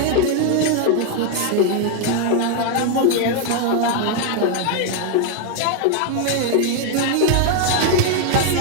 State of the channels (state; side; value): different; both; correlation 0.01